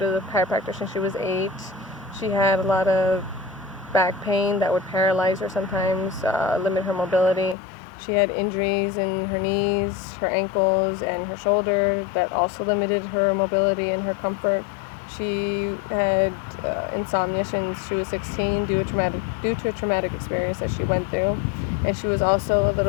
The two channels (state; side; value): drops out; right; at 7.6 s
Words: the chiropractor since she was 8. She had a lot of back pain that would paralyze her sometimes, limit her mobility. She had injuries in her knees, her ankles, and her shoulder that also limited her mobility and her comfort. She had insomnia since she was 16 due to a traumatic experience that she went through. And she was also a